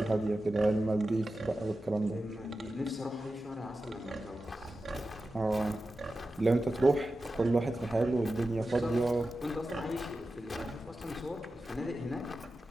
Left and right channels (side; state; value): both; normal; correlation 0.93